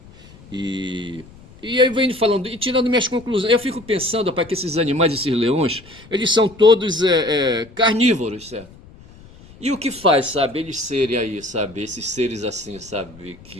E, e aí vem falando, e tirando minhas conclusões, eu fico pensando, rapaz, que esses animais, esses leões, eles são todos carnívoros, certo? E o que faz, sabe, eles serem aí, sabe, esses seres assim, sabe,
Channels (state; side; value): noise; left; rumble, 22 dB below the sound